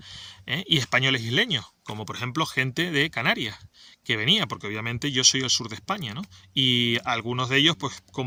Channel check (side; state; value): both; identical; correlation 1.00